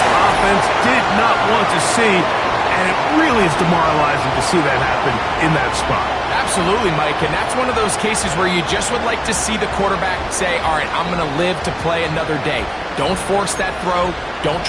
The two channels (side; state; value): both; identical; correlation 1.00